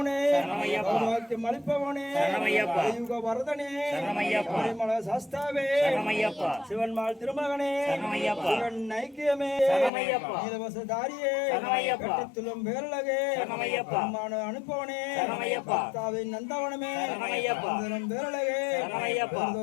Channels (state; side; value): drops out; right; at 9.9 s